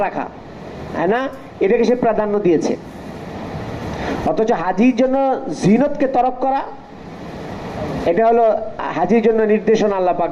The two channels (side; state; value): both; identical; correlation 1.00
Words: রাখা, হ্যাঁ না, এটাকে সে প্রাধান্য দিয়েছে। অথচ হাজির জন্য জিনতকে তরক করা, এটা হলো হাজির জন্য নির্দেশনা আল্লাহ